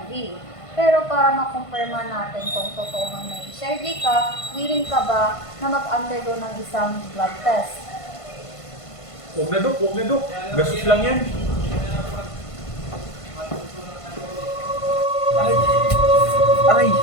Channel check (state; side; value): late; right; 1.5 ms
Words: Pero para makumpirma natin kung totoo ang may HIV ka, willing ka ba na mag-undergo ng isang blood test? Huwag na, Dok. Gastos lang yan. Aray! Aray!